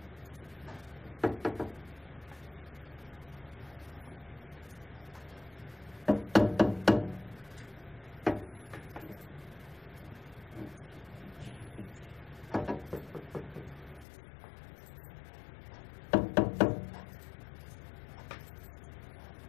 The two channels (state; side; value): drops out; right; at 14.1 s